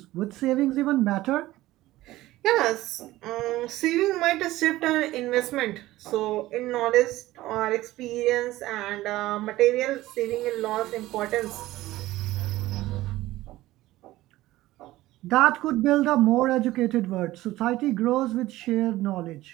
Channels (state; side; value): quieter; left; 16.8 dB